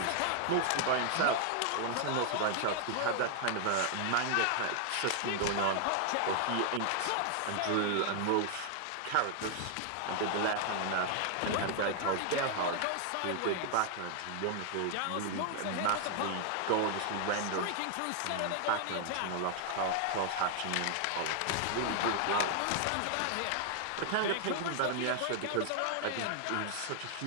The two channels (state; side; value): different; both; correlation 0.00